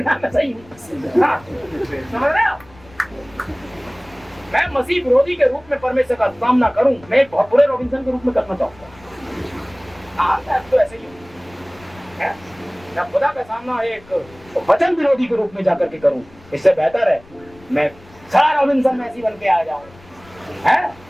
जाए, मैं सही हूँ। हाँ, समझ रहे हो? मैं मसीह विरोधी के रूप में परमेश्वर का सामना करूं, मैं एक बहुत बुरे रॉबिन्सन के रूप में करना चाहूंगा। हाँ, तो ऐसे ही है, मैं खुदा का सामना एक वचन विरोधी के रूप में जाकर के करूं, इससे बेहतर है मैं सारा रॉबिन्सन मैसी बन के आ जाऊं, है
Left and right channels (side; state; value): left; noise; rumble, 24 dB below the sound